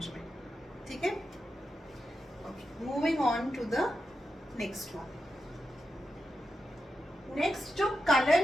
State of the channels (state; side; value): normal; both; correlation 0.88